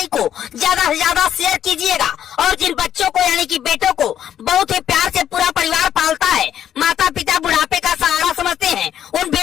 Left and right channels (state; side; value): quieter; right; 10.1 dB